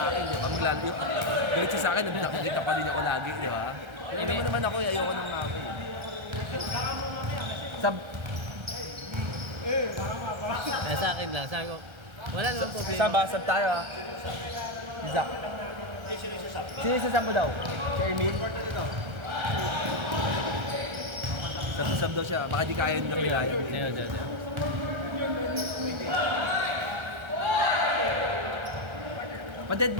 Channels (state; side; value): late; left; 1.3 ms